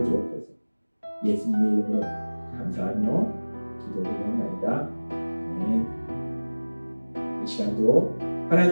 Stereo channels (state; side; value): inverted; both; correlation -1.00